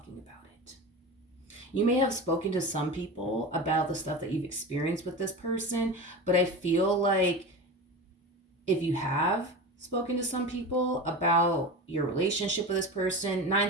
about it. You may have spoken to some people about the stuff that you've experienced with this person, but I feel like if you have spoken to some people about your relationship with this person,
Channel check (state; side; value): normal; both; correlation 0.28